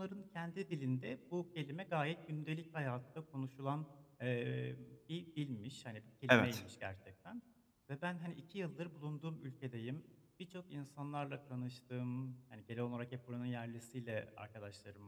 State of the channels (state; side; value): identical; both; correlation 1.00